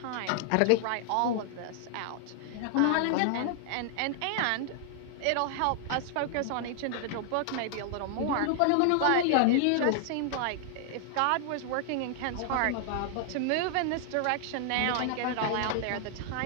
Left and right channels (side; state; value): both; different; correlation 0.00